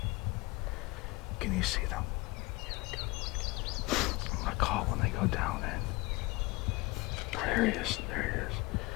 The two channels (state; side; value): quieter; right; 23.5 dB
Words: Can you see them? I'm gonna call when they go down in. Oh, there he is. There he is.